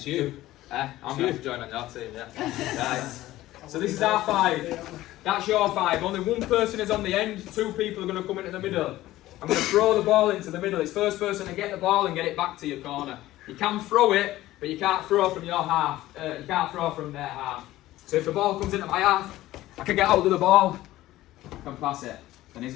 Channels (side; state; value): right; quieter; 15.9 dB